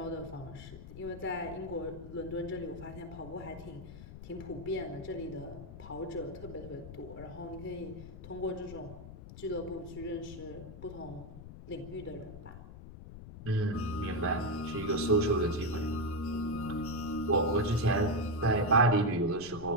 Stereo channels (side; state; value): left; noise; rumble, 13 dB below the sound